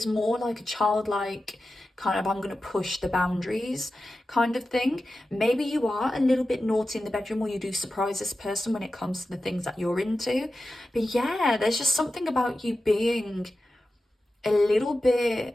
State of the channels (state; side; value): normal; both; correlation 0.93